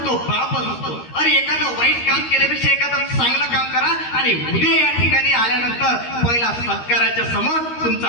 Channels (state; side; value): late; right; 13 ms